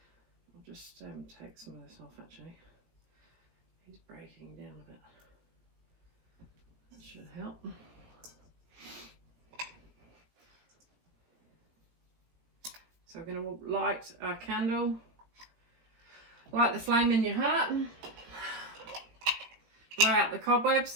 just take some of this off actually. He's breaking down a bit. That should help. So we're going to light our candle. Light the flame in your heart. Blow out the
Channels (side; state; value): left; late; 18 ms